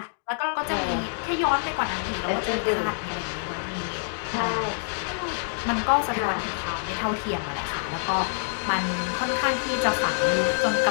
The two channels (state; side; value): silent; right; digital silence